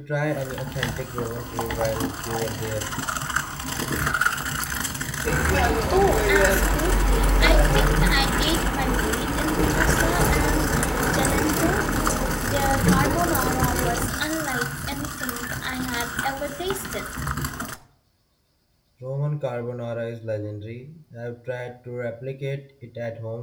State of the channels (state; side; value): identical; both; correlation 1.00